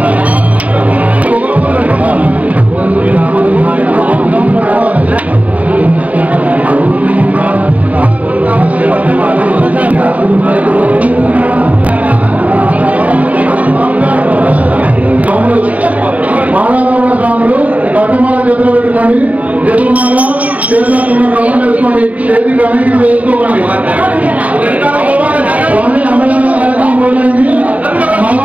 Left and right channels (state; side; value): late; left; 0.070 ms